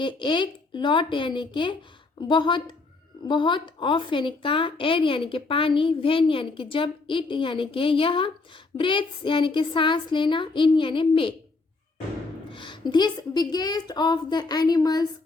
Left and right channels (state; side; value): quieter; right; 3.7 dB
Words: एक, लॉट यानी कि बहुत बहुत, ऑफ यानी का, एयर यानी कि पानी, व्हेन यानी कि जब, इट यानी कि यह, ब्रेथ्स यानी कि सांस लेना, इन यानी में। This biggest of the animals